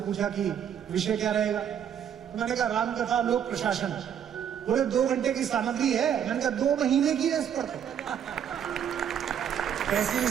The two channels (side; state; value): left; quieter; 8.9 dB